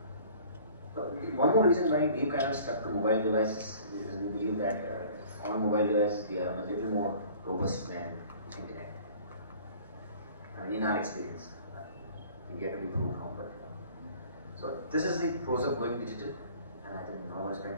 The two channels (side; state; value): both; inverted; correlation -0.49